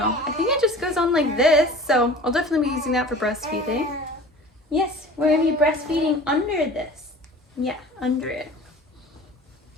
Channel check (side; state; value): both; normal; correlation 0.41